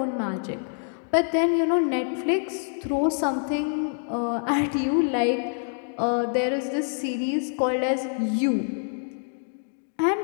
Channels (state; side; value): silent; right; digital silence